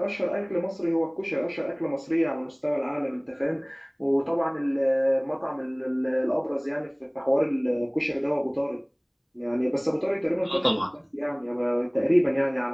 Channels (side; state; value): both; identical; correlation 1.00